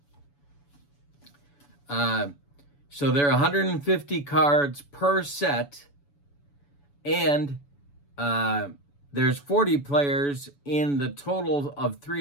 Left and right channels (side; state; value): right; late; 7.0 ms